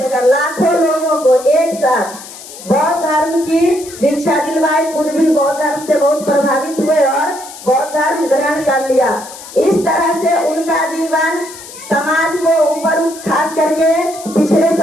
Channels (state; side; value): noise; left; hiss, 15 dB below the sound